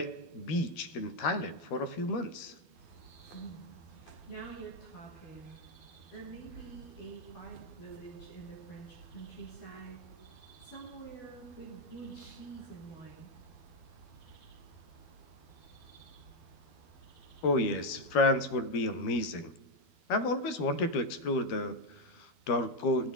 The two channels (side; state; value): right; late; 12 ms